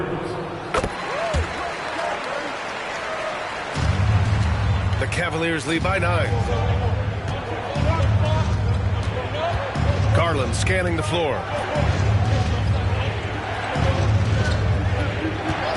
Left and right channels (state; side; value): identical; both; correlation 1.00